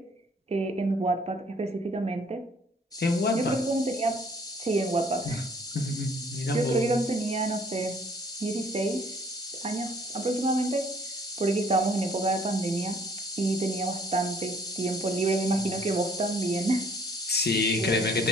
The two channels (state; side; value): normal; both; correlation 0.60